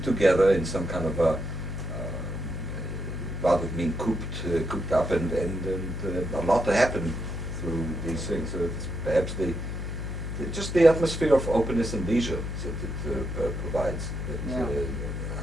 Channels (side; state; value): left; noise; hum, 4 dB below the sound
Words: together in some kind of a, rather than being cooped up, and a lot to happen through these things. So it's perhaps just the atmosphere of openness and leisure that it provides, that